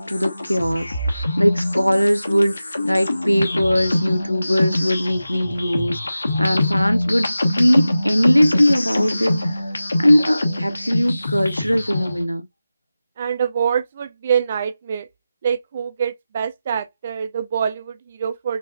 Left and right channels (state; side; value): inverted; both; correlation -0.93